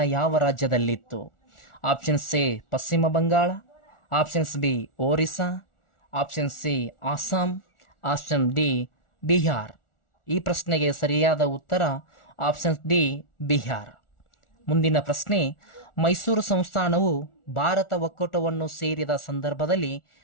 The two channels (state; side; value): late; right; 1.4 ms